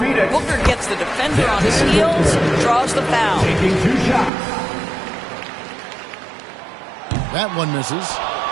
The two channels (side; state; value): left; drops out; at 4.3 s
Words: Booker gets the defender on his heels, draws the foul. That one misses.